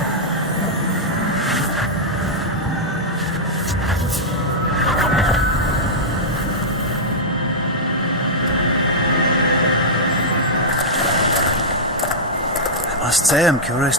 I must say I'm curious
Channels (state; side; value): normal; both; correlation -0.07